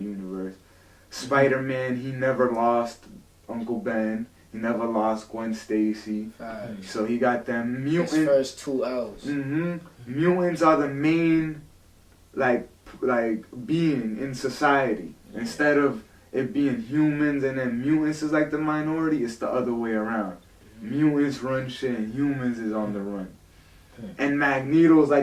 universe. Spider-Man, he never lost Uncle Ben. He never lost Gwen Stacy. So he got them mutants. His first 2 L's. Mutants are the main, like being in society. Instead of it being humans and then mutants is like the minority, it's the other way around. Mutants run shit and humans is on the run. And Magneto's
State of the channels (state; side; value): identical; both; correlation 1.00